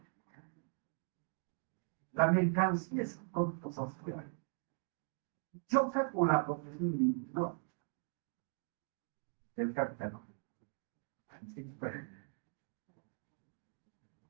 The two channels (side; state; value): left; silent; 51 dB below the other